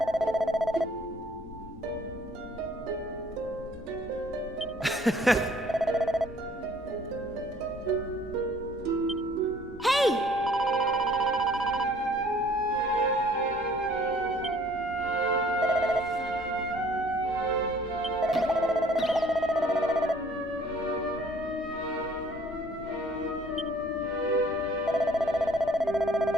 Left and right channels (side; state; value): both; normal; correlation 0.57